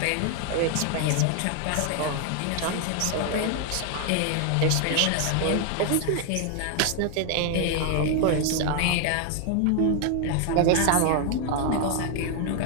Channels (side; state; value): both; different; correlation 0.00